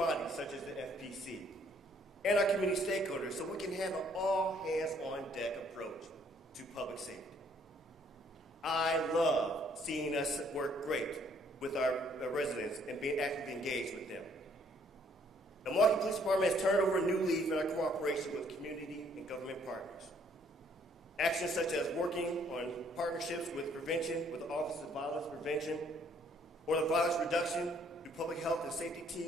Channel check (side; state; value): both; normal; correlation 0.64